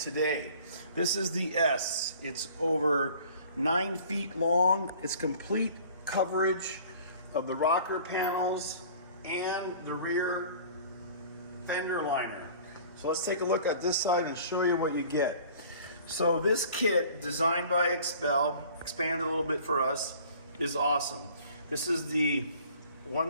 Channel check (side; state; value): both; inverted; correlation -0.49